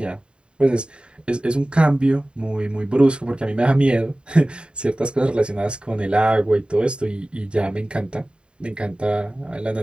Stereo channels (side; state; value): left; late; 0.053 ms